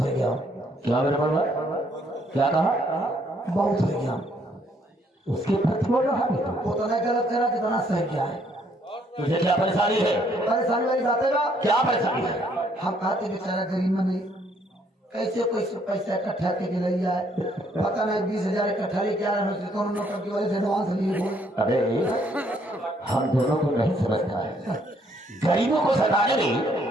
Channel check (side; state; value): both; normal; correlation 0.67